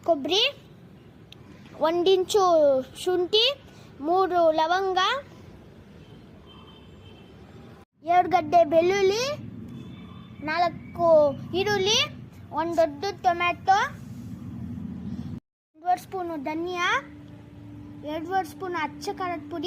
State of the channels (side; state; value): both; identical; correlation 1.00